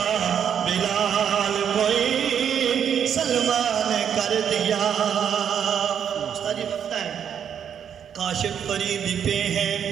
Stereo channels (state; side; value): quieter; left; 8.3 dB